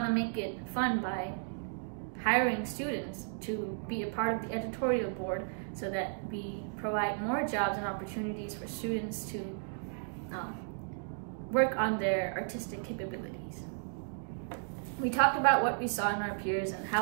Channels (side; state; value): left; silent; digital silence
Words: to make it fun by hiring students to be a part of the editorial board so that we provide more jobs and opportunities for students to work on their artistic capabilities. We talked about what we saw in our peers and